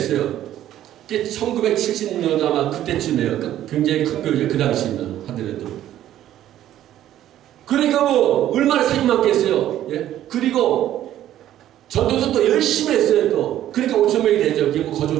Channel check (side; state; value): left; quieter; 12.4 dB